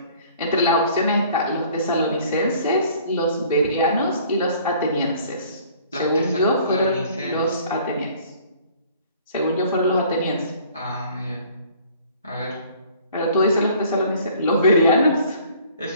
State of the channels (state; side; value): inverted; both; correlation -0.54